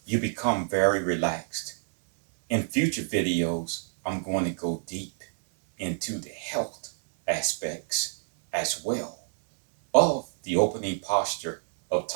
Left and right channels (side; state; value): left; silent; digital silence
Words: You become very relaxed. In future videos, I'm going to go deep into the health aspects as well of the opening posture of